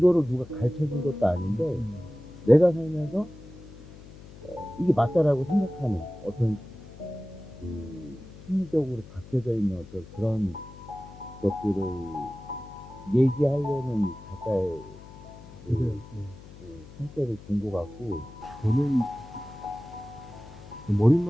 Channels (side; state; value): left; noise; hum, 18 dB below the sound